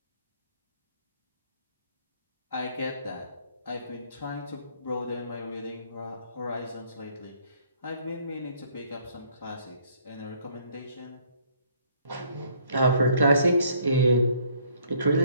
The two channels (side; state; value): both; inverted; correlation -0.62